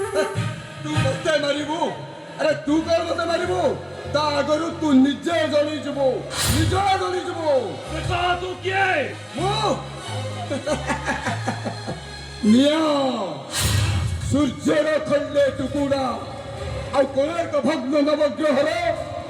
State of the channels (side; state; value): both; identical; correlation 1.00